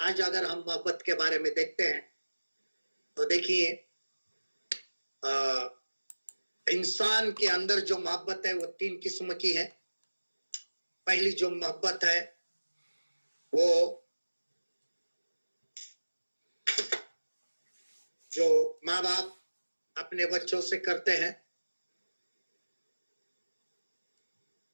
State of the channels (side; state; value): both; inverted; correlation -1.00